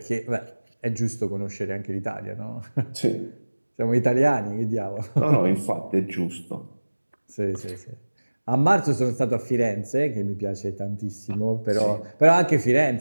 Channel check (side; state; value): both; inverted; correlation -1.00